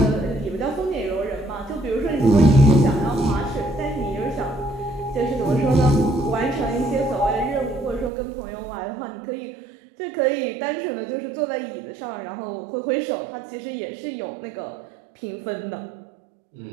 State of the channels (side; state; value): left; drops out; at 8.1 s